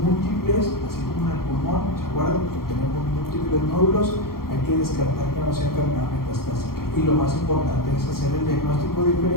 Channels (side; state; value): right; late; 0.93 ms